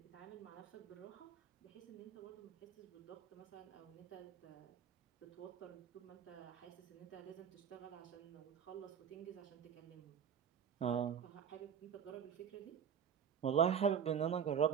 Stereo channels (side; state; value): left; quieter; 7.9 dB